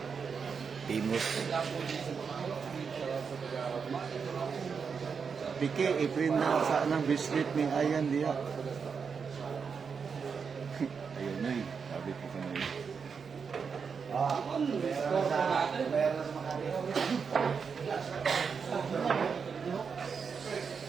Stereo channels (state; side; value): quieter; left; 5.9 dB